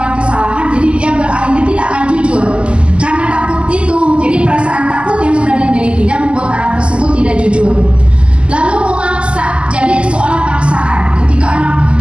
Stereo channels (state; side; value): late; left; 0.053 ms